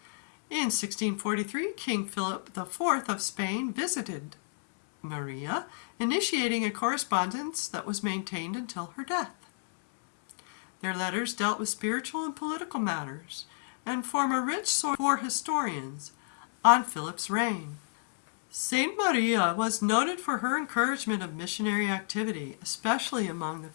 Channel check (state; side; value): silent; right; digital silence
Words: In 1643, King Philip IV of Spain visited Maria, initiating a correspondence that was maintained until her death. Their letters dealt with spiritual and political matters and form a rich source for historians on Philip's reign. Saint Maria was noted for her encouragement of missionary activity, especially among the